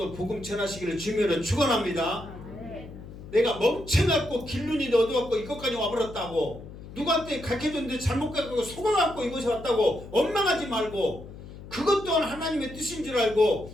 복음 전하시기를 주님으로 축원합니다. 내가 멍청갖고 길눈이 어두웠고 이것까지 와버렸다고, 누구한테 가르쳐줬는데 잘못 가르치고 속아갖고 이곳에 왔다고 원망하지 말고, 그것 또한 하나님의 뜻인 줄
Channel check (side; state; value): left; noise; hum, 14 dB below the sound